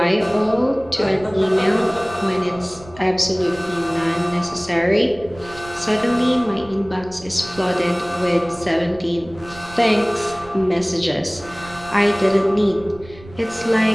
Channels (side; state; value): right; noise; rumble, 20 dB below the sound